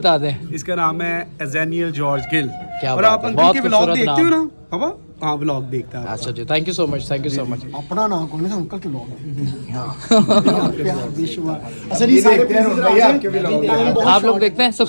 दें। इसका नाम है एजेनियल जॉर्ज गिल। क्या और बात आप है, अंकल बहुत के व्लॉग खूबसूरत देखते हो नाम। ना पापा? हाँ व्लॉग देखता है। अच्छा जी थैंक यू सो मच अपना नाम कौन है अंकल के लोग आप लोग देखते हैं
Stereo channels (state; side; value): inverted; both; correlation -1.00